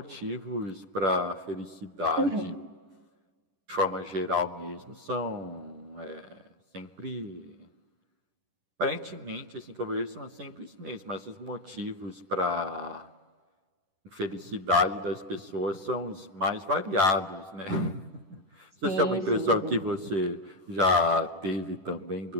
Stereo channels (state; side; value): late; left; 10 ms